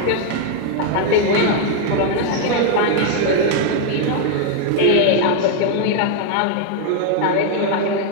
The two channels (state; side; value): different; both; correlation 0.00